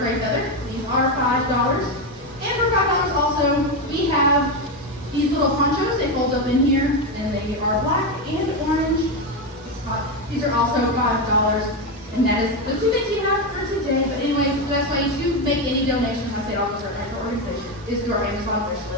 prey feather. These are $5. And for $5 also, we have these little ponchos. They fold up in here, and they are black and orange. These are also $5, and that is the two things we have for today. But anyways, the best way to make any donation, I say it offers our actual organization, is through our Amazon wish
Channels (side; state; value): both; normal; correlation 0.11